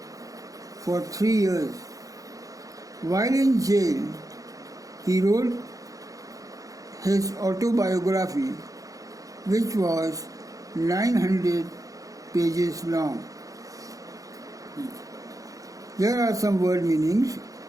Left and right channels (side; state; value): left; late; 0.17 ms